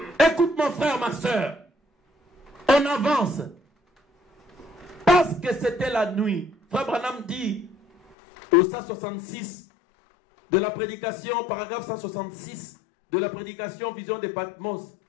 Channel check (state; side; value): drops out; right; at 8.2 s